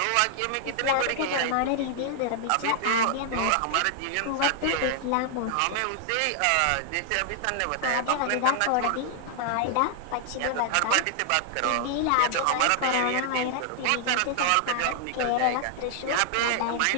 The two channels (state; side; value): different; both; correlation 0.00